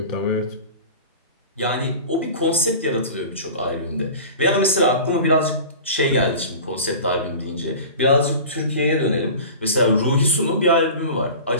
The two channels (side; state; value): both; inverted; correlation -0.37